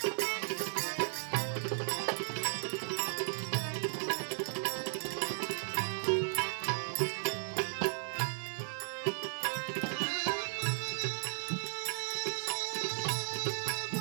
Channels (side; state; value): left; silent; digital silence